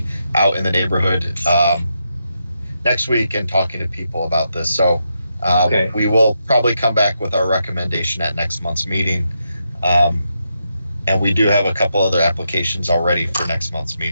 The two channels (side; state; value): both; inverted; correlation -0.83